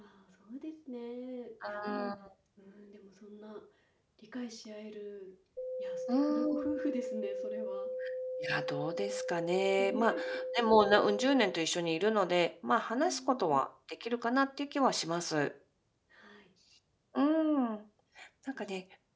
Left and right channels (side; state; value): both; identical; correlation 1.00